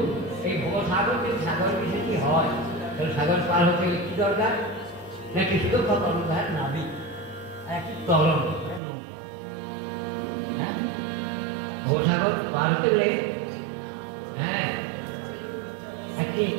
এই ভবসাগর যে সাগর বিষয়ে কি হয়, তাহলে সাগর পার হতে গেলে কি দরকার? নাকি শুধু কর্ণধার নাবিক, একটি তরল নৌকা। হ্যাঁ, ভবসাগর পার হতে গেলে হ্যাঁ একটি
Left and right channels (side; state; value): left; drops out; at 8.8 s